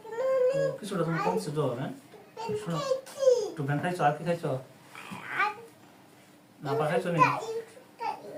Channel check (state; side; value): identical; both; correlation 1.00